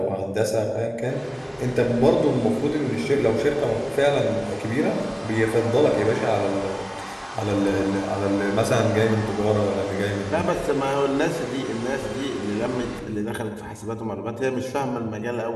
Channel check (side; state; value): both; identical; correlation 1.00